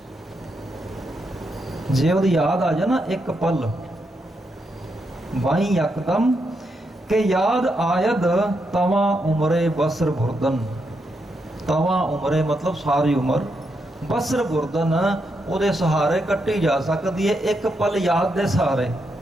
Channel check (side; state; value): both; normal; correlation 0.82